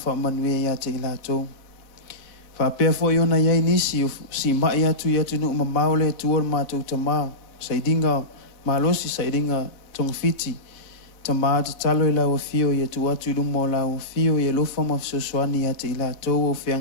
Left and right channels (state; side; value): late; right; 4.0 ms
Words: ia te ilatou. Whapea fo iona iai nisi, si mai atu i atu nuk mamao le tuor mātou tamā. Saidinga malosi, saidinga tongfiti. Tamā te talo i lau fio, ia tu atu i lumo lau fio, ia lofa ma fsoswani ia te ilatou, o